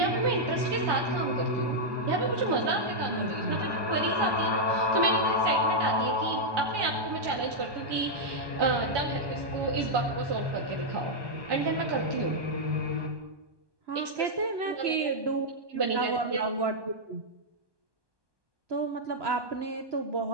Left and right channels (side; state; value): left; late; 1.2 ms